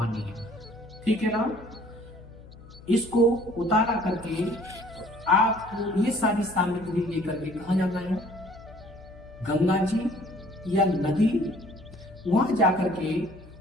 है, ठीक है ना। इसको उतारा करके आपको ये सारी सामग्री लेकर के कहाँ जाना है, गंगा जी या नदी, वहां जाकर के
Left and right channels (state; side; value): noise; left; hum, 20 dB below the sound